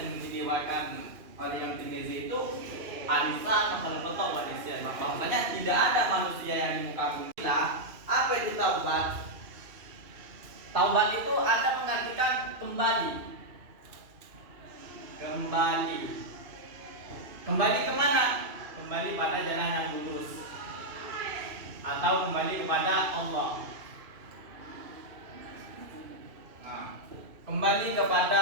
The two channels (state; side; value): late; left; 2.7 ms